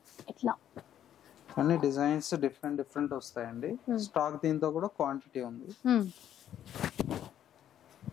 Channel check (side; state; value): right; quieter; 10.6 dB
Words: ఇట్లా అన్ని డిజైన్స్ డిఫరెంట్ వస్తాయండి. స్టాక్ దీంతో కూడా క్వాంటిటీ ఉంది.